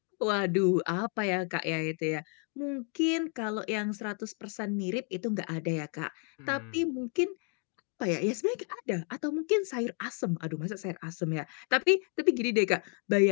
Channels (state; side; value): quieter; right; 39.9 dB